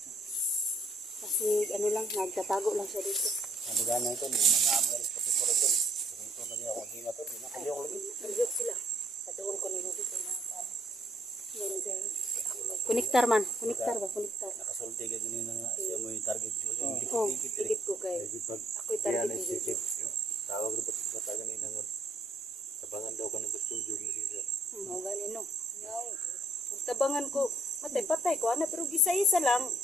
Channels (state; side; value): normal; both; correlation 0.67